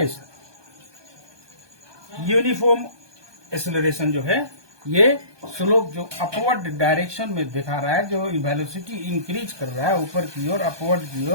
यूनिफॉर्म एक्सेलरेशन जो है ये स्लोप जो अपवर्ड डायरेक्शन में दिखा रहा है, जो वेलोसिटी इंक्रीज कर रहा है ऊपर की ओर, अपवर्ड की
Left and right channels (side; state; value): left; late; 1.2 ms